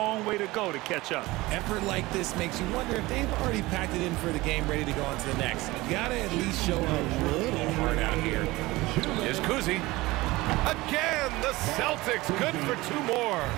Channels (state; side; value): quieter; left; 20.2 dB